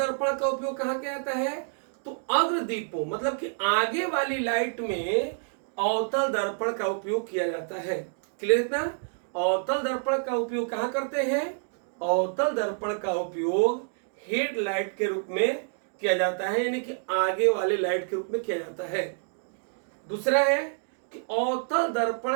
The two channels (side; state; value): left; silent; digital silence